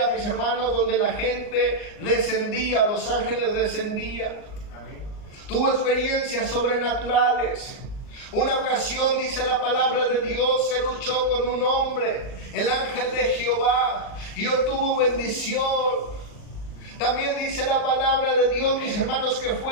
mis hermanos, donde la gente descendía, los ángeles descendían. Tuvo experiencias sobrenaturales. Una ocasión, dice la palabra de Dios, se luchó con un hombre, el ángel de Jehová, y obtuvo bendición. También dice la palabra de Dios, mis hermanos, que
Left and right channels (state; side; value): late; right; 38 ms